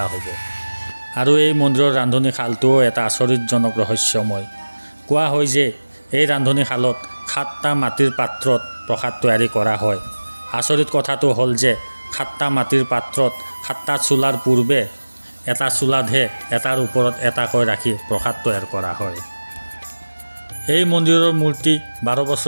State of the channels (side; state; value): both; inverted; correlation -1.00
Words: হ'ব। আৰু এই মন্দিৰৰ ৰান্ধনীশালটোও এটা আচৰিতজনক ৰহস্যময়। কোৱা হয় যে এই ৰান্ধনীশালত 7টা মাটিৰ পাত্ৰত প্ৰসাদ তৈয়াৰী কৰা হয়। আচৰিত কথাটো হ'ল যে 7টা মাটিৰ পাত্ৰত 7টা চুলাৰ পূৰ্বে এটা চুলাতহে এটাৰ ওপৰত এটাকৈ ৰাখি প্ৰসাদ তৈয়াৰ কৰা হয়। এই মন্দিৰৰ মূৰ্তি 12